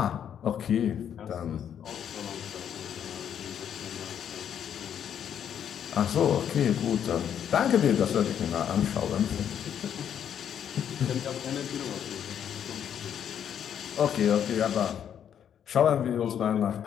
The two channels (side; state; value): right; quieter; 9.0 dB